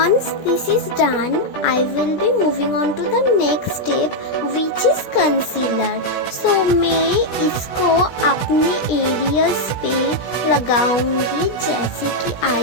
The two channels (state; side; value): late; right; 17 ms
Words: this is done, I will be moving on to the next step, which is concealer. So मैं इसको अपने एरियाज पे लगाऊंगी, जैसे कि